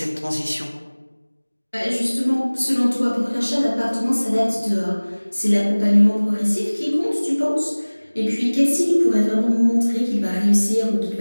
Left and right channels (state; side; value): inverted; both; correlation -1.00